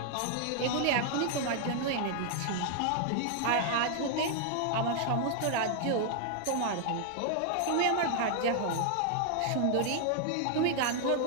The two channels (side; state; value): both; different; correlation 0.00